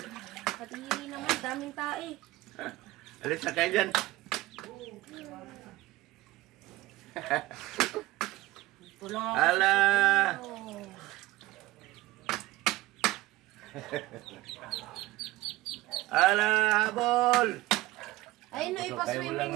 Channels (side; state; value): left; quieter; 18.2 dB